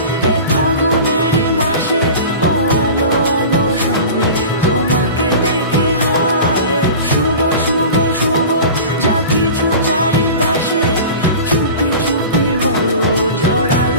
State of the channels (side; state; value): both; inverted; correlation -0.36